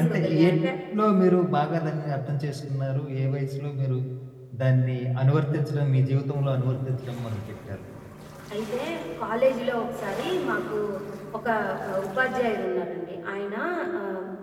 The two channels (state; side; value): identical; both; correlation 1.00